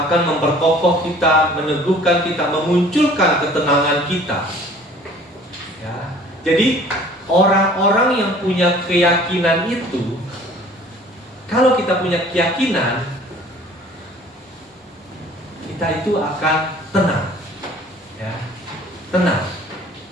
memperkokoh kita, meneguhkan kita, memunculkan ketenangan kita. Ya. Jadi orang-orang yang punya keyakinan itu, kalau kita punya keyakinan, kita itu akan tenang. Ya. Tenang.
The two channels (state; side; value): normal; both; correlation 0.51